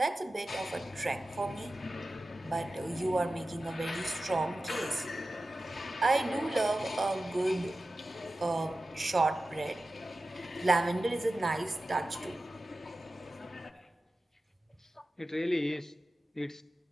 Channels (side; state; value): both; normal; correlation 0.94